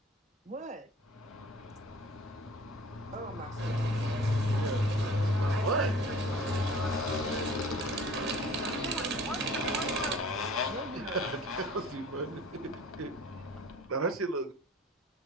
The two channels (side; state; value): both; normal; correlation 0.46